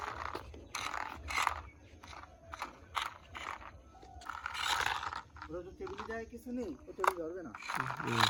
ওরা তো টেবিলে যায় কিছু নেই, ও টেবিল ধরবে না।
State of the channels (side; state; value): both; identical; correlation 1.00